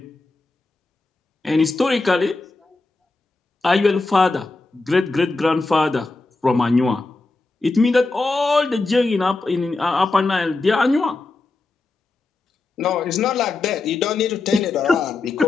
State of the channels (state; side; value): quieter; right; 3.5 dB